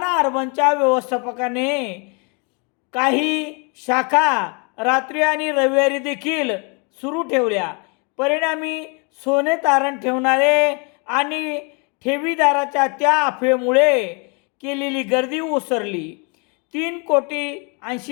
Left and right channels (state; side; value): quieter; right; 33.8 dB